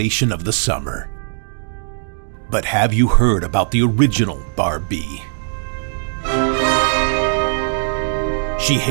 of the summer. But have you heard about the original Barb-B? She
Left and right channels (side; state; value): left; silent; digital silence